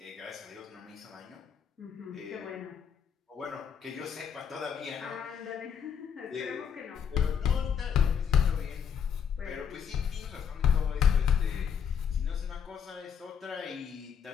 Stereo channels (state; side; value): quieter; right; 7.6 dB